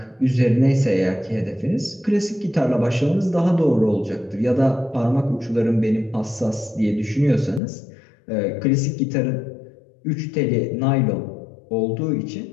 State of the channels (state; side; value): drops out; right; at 7.6 s